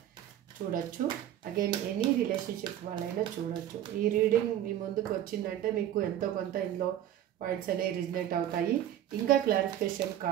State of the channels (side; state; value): left; quieter; 11.6 dB